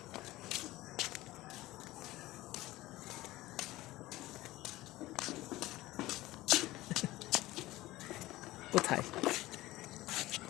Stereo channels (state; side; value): quieter; right; 17.8 dB